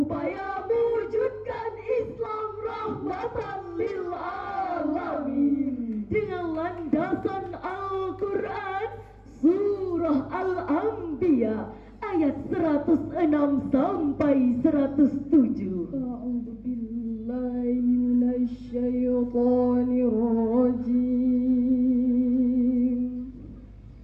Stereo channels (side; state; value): both; identical; correlation 1.00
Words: Mewujudkan Islam Rahmatan Lil Alamin, dengan landasan Al-Quran Surah Al-Anbiya ayat 106 sampai 107. A'udzu billahi minasyaitonir rajim.